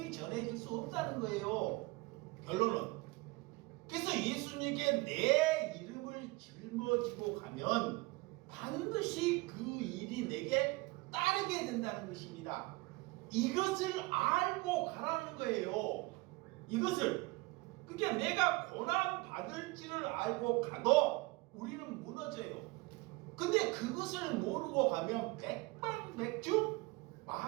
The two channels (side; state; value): left; quieter; 23.3 dB